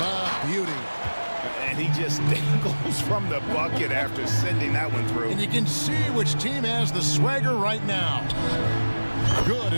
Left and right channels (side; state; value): both; inverted; correlation -1.00